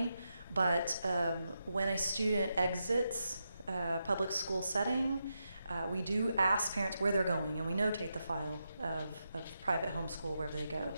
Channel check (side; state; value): both; inverted; correlation -0.86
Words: But when a student exits a public school setting, we do ask parents where they're going, and we notate the file of private homeschool wherever they go.